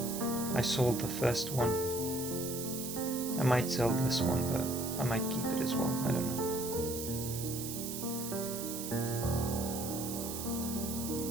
I sold the first one. I might sell this one, but I might keep it as well. I don't know.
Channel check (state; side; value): noise; right; hiss, 6 dB below the sound